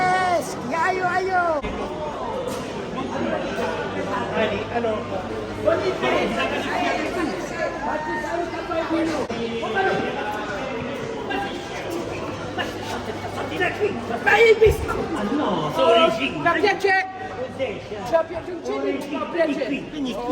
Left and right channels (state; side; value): identical; both; correlation 1.00